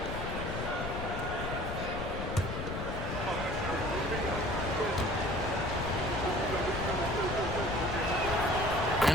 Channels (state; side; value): noise; left; rumble, 5 dB below the sound